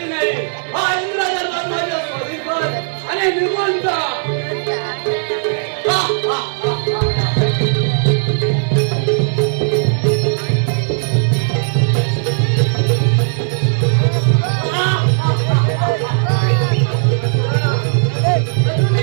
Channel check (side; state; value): left; silent; digital silence